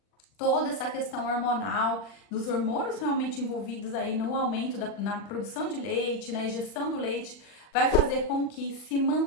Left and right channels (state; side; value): late; right; 40 ms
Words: toda essa questão hormonal, dos hormônios realmente envolvidos aí no aumento na produção de leite, na ejeção do leite, vai fazer com que se